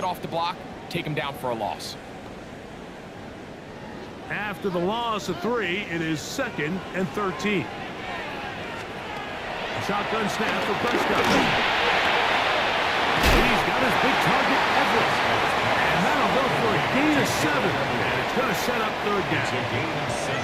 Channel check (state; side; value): identical; both; correlation 1.00